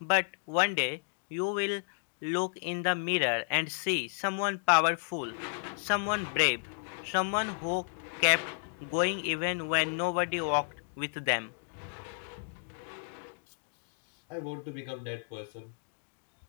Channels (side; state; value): right; silent; digital silence